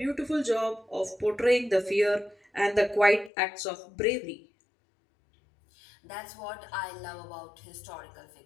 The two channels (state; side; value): drops out; right; at 3.3 s